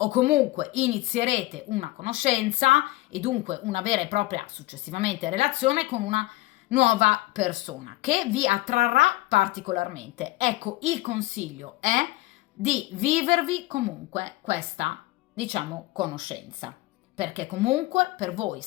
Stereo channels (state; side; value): quieter; right; 18.9 dB